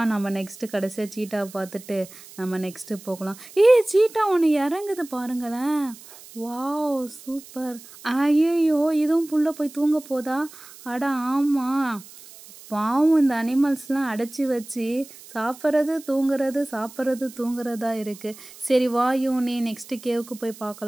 நம்ம நெக்ஸ்ட்டு கடைசியாக சீட்டா பார்த்துட்டு நம்ம நெக்ஸ்ட்டு போகலாம். சீட்டா ஒன்று இறங்குது பாருங்களேன். Wow, super. ஐயோ, இதுவும் புள்ள போய் தூங்க போதா? அட ஆமாம், பாவம், இந்த அனிமல்ஸ்லாம் அடைச்சி வச்சு சாப்பிட்றது தூங்குறது சாப்பிட்றது தூங்குறதா இருக்குது. சரி வா யூனி, நெக்ஸ்ட்டு கேவுக்கு போய்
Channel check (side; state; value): right; noise; hiss, 19 dB below the sound